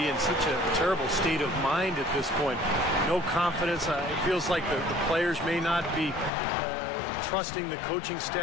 in such a terrible state of mind at this point. No confidence. It feels like the players may not be trusting the coaching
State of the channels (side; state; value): right; drops out; at 6.3 s